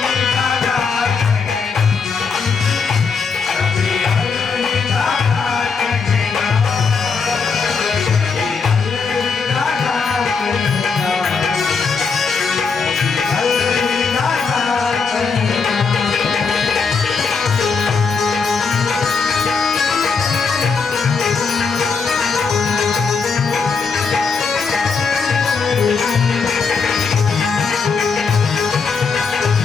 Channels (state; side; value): quieter; right; 5.2 dB